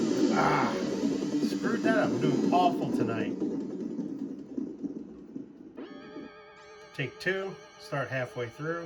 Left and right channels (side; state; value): both; identical; correlation 1.00